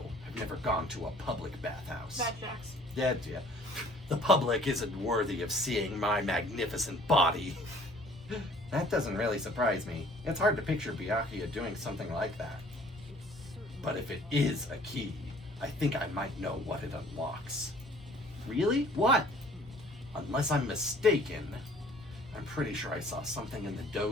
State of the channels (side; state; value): both; normal; correlation 0.54